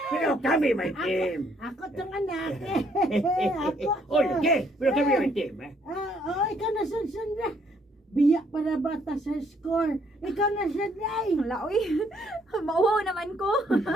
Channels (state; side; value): normal; both; correlation 0.68